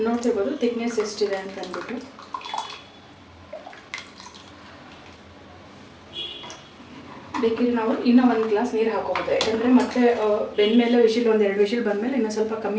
ನೋಡ್ತಿರ್ಬೋದು ಥಿಕ್ನೆಸ್ ಎಷ್ಟಿದೆ ಅಂತ ಅಂದ್ಬಿಟ್ಟು. ಬೇಕಿದ್ರೆ ನಾವು ಇನ್ನೂ 1 ಗ್ಲಾಸ್ ನೀರು ಹಾಕೋಬೋದು, ಯಾಕಂದರೆ ಮತ್ತೆ ಬೆಂದಮೇಲೆ ವಿಶಿಲ್ 1-2 ವಿಶಿಲ್ ಬಂದಮೇಲೆ ಇನ್ನೂ ಸ್ವಲ್ಪ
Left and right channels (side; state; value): both; identical; correlation 1.00